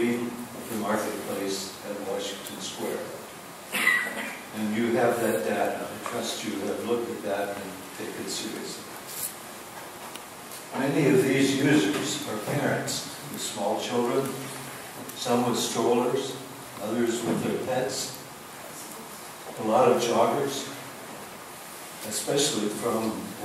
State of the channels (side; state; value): both; identical; correlation 1.00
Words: the marketplace at Washington Square. And you have that data. I trust you have looked at that and take it seriously. Many of these users are parents with small children, some with strollers, others with their pets, a lot of joggers, especially from